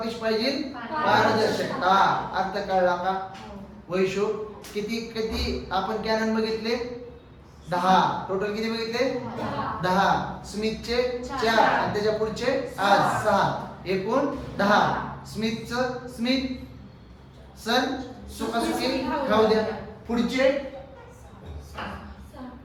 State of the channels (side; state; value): both; identical; correlation 1.00